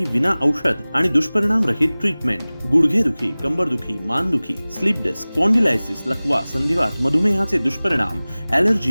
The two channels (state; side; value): inverted; both; correlation -0.99